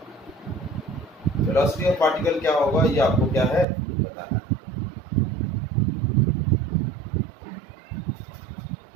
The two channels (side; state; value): left; drops out; at 3.7 s